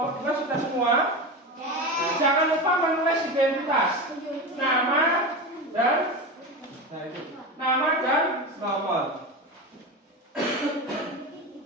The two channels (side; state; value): both; normal; correlation 0.23